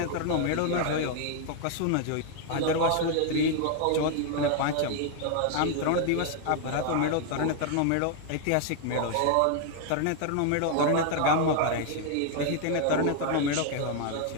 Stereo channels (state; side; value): different; both; correlation 0.00